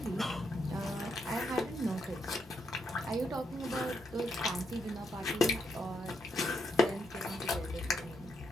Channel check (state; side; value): normal; both; correlation 0.79